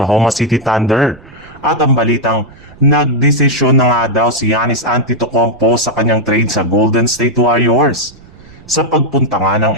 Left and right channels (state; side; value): noise; right; rumble, 23 dB below the sound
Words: City Thunder. At ang balitang nagdesisyon na nga daw si Giannis Antetokounmpo sa kanyang trade sa Golden State Warriors. Sa pagpunta nga ng